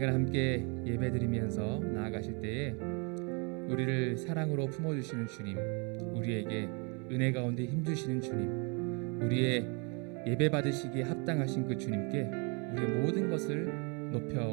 함께 예배드리면서 나아가실 때에 우리를 사랑으로 품어주시는 주님, 우리에게 은혜 가운데 힘주시는 주님, 우리의 예배 받으시기에 합당하신 그 주님께 우리의 모든 것을 높여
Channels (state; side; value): quieter; left; 33.5 dB